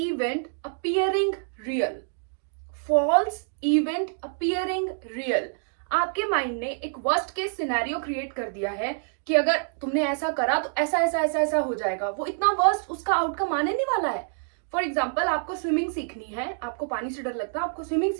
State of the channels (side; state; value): left; silent; digital silence